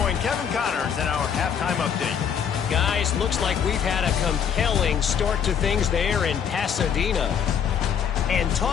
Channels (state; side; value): quieter; right; 7.9 dB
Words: Kevin Connors in our halftime update. Guys, looks like we've had a compelling start to things there in Pasadena. And